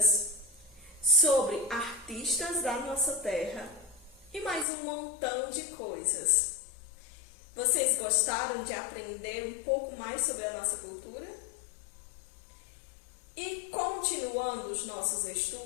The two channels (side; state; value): right; drops out; at 4.7 s